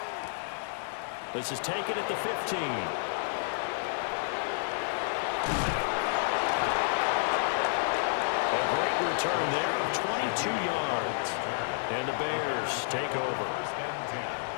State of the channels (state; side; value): silent; right; digital silence